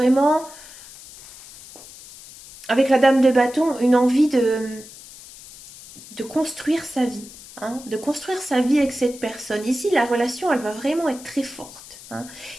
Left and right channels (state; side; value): noise; left; hiss, 18 dB below the sound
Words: avec la dame de bâton, une envie de construire sa vie, hein, de construire sa vie avec cette personne. Ici, la relation, elle va vraiment être très forte, hein.